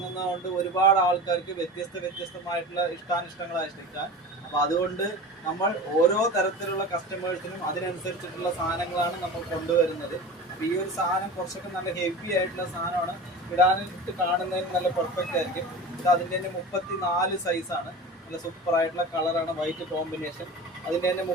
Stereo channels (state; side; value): normal; both; correlation 0.33